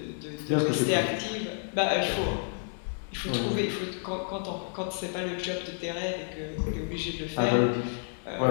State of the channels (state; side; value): silent; right; 58 dB below the other